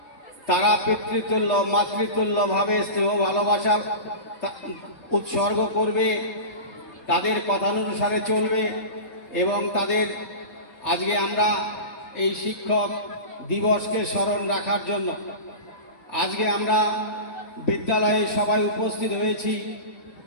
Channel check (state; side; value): late; right; 4.3 ms